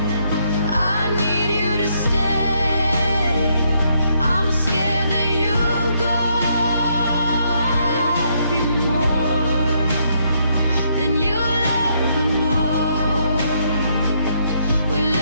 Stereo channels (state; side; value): inverted; both; correlation -0.73